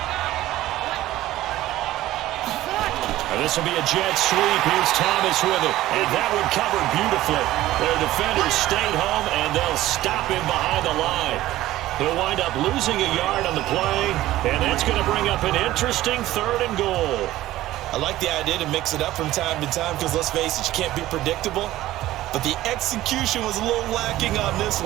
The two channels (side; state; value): left; quieter; 15.4 dB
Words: This will be a jet sweep. Here's Thomas with it. And that one covered beautifully. Their defenders stayed home, and they'll stop him behind the line. He'll wind up losing a yard on the play, and that's going to bring up an interesting 3rd and goal. I like the idea to mix it up from time to time because, let's face it, you can't be predictable. But the execution was a little lacking on this